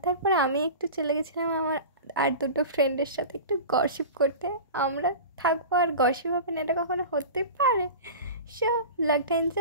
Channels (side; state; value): both; inverted; correlation -0.33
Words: তারপরে আমি একটু চলে গেছিলাম আমার আর দুটো ফ্রেন্ডের সাথে একটু গসিপ করতে। আমরা থাকবো আর গসিপ হবে না, এটা কখনো হতে পারে? সো ব্লগটা